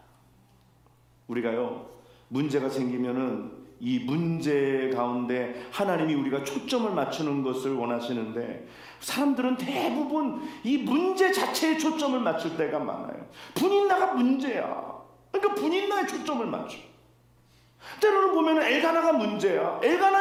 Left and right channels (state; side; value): identical; both; correlation 1.00